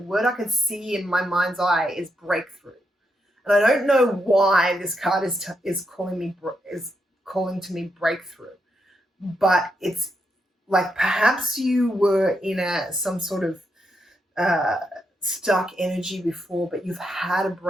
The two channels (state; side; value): normal; both; correlation 0.81